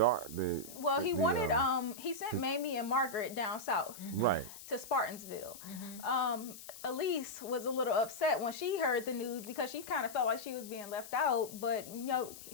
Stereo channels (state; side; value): noise; left; hiss, 14 dB below the sound